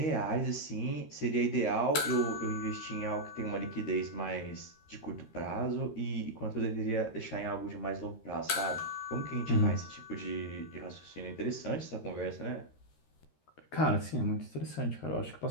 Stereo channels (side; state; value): right; late; 13 ms